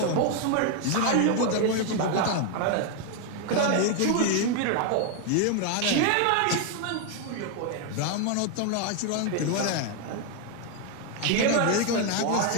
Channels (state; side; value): different; both; correlation 0.01